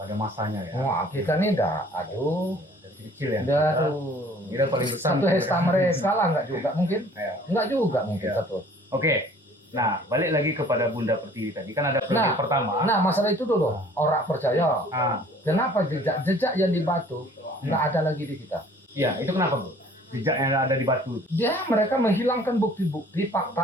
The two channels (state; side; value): normal; both; correlation 0.53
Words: masanya ya. Wah, kita nih dah, aduh, Dari kecil ya. aduh. Kita paling besar. Satu hesta mereka lah, enggak juga mungkin. Ya. Enggak juga mungkin Ya. satu. Oke. Nah, balik lagi kepada Bunda Pertiwi tadi. Kan ada periode Nah, pertama. Nah, masalah itu dulu. Orang percaya. Ah, Kenapa jejak yang di batu nggak ada lagi di kita? iya, itu kenapa, Bu? Jejak yang ada di batu Mereka menghilangkan bukti-bukti